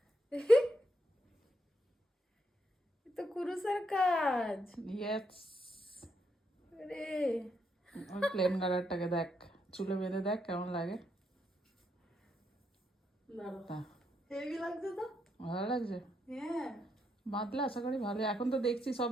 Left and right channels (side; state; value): both; normal; correlation 0.79